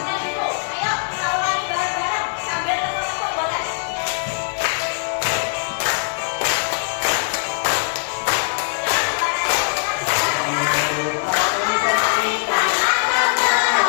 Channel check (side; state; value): right; silent; digital silence